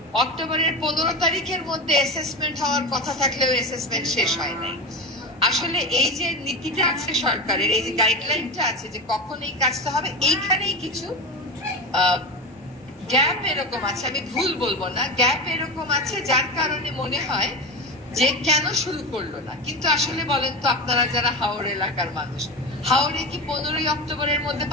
অক্টোবরের 15 তারিখের মধ্যে অ্যাসেসমেন্ট হওয়ার কথা থাকলেও অ্যাসেসমেন্ট শেষ হয় নাই। আসলে এই যে নীতিটা আছে সরকারের, এই যে গাইডলাইনটা আছে যে কখন এই কাজটা হবে, এইখানেই কিছু গ্যাপ এরকম আছে, আমি ভুল বলবো না, গ্যাপ এরকম আছে যার কারণে মনে হয় যে কেন শুরু করলো না। কিন্তু আসলে বলেন তো আপনারা যারা হাওড় এলাকার মানুষ, হাওড়ে কি 15ই অক্টোবরের মধ্যে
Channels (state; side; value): normal; both; correlation 0.23